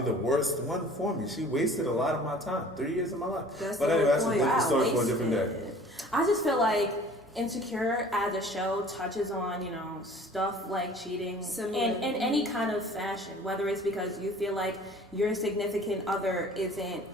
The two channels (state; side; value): normal; both; correlation 0.48